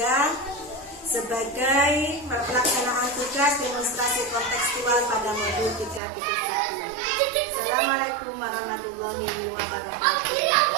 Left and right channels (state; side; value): drops out; left; at 6.0 s